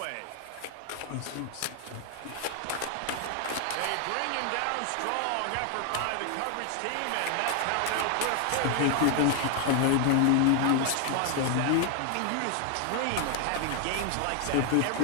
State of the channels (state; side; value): different; both; correlation 0.01